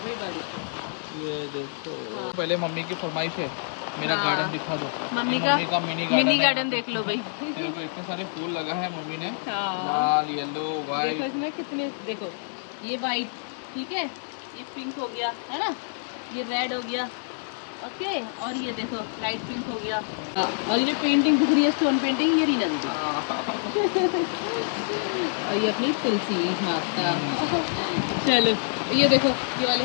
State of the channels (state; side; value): silent; right; 58 dB below the other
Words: बारिश का। ये देखो, हाँ। पहले मम्मी की फरमाइश है, मेरा हाँ। गार्डन दिखा दो। मम्मी ये का मम्मी का मिनी गार्डन गार्डन देख लो भाई। देखो इतने सारे फूल लगा है मम्मी ने, हाँ। लाल, येलो, देखो व्हाइट। इसमें कितने, देखो ये वाइट, ठीक है, ये पिंक हो गया है ना, ये रेड हो गया, ओके, और ये देखो लाइट पिंक हो गया। और ये पेंटिंग दिख रही है, स्टोन पेंटिंग, ये रीना दीदी। और ये अपनी तुलसी माता। चलो ये देखो, ये वाले